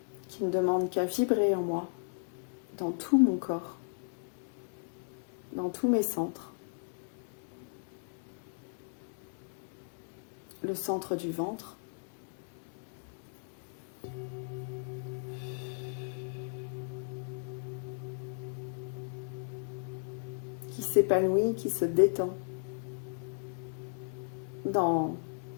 qui ne demande qu'à vibrer en moi, dans tout mon corps, dans tous mes centres. Le centre du ventre, qui s'épanouit, qui se détend dans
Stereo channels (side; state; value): right; silent; 54 dB below the other